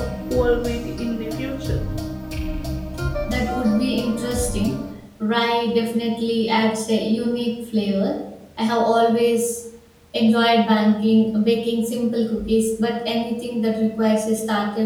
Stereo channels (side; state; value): both; identical; correlation 1.00